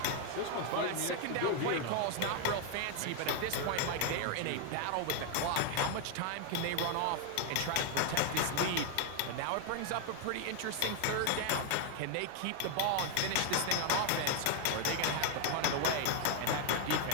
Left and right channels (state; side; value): different; both; correlation 0.00